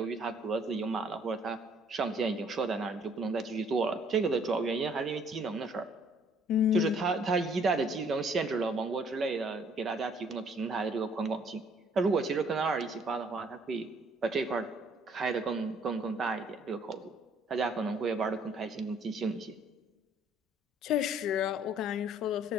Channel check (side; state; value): both; normal; correlation 0.61